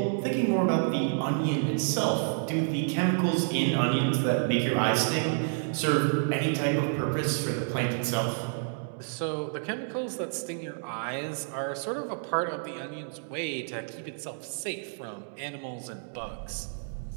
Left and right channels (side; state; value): left; silent; digital silence